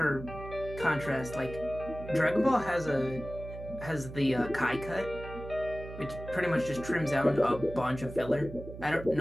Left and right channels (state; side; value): noise; right; hum, 12 dB below the sound